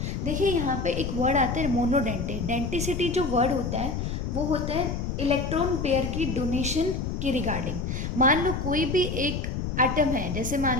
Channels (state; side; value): noise; left; rumble, 3 dB below the sound